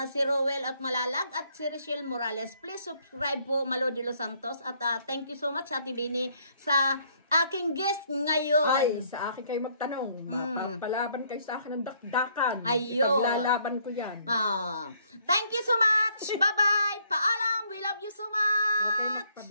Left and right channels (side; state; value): both; inverted; correlation -0.67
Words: Si Rowel at Malalag at si Rochelle Morales. Please subscribe po Malo de los Santos. At thank you so much Ate Bini sa aking guest ngayon. Ay, sa akin kayo magtanong. Mapapalaban kayo sa akin ng dakdakan. Ayun. Ipaglalaban ko yan. Thank you so much. Bye-bye. Paalam. We love you so much. Okay,